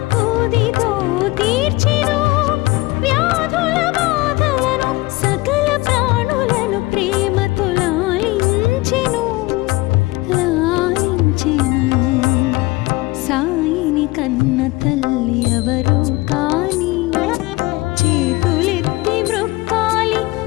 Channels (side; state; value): right; quieter; 21.2 dB